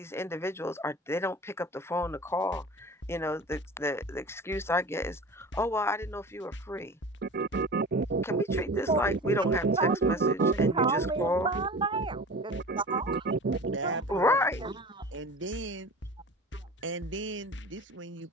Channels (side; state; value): both; normal; correlation 0.37